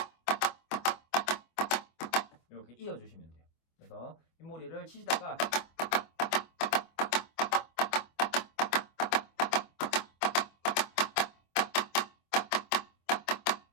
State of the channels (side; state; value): right; late; 25 ms